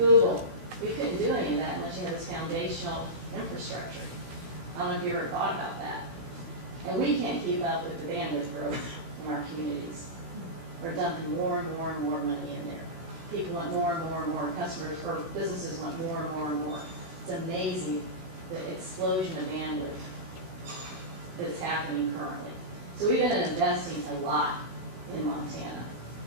We couldn't do any of that unless you had this foundational infrastructure. I don't know if you ever thought about that. And we can't keep up with the bandwidth growth in our communities. We're dumping more and more and more money in there. People want more and more and more. Customers or businesses want more and more and more. It's amazing the explosion of bandwidth that's happening currently. So we've been investing a lot in Montana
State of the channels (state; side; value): late; left; 16 ms